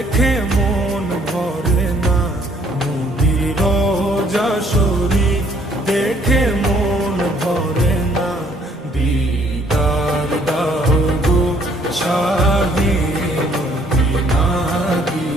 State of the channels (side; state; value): both; normal; correlation 0.63